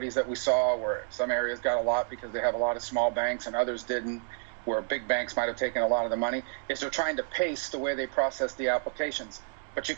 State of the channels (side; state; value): left; silent; digital silence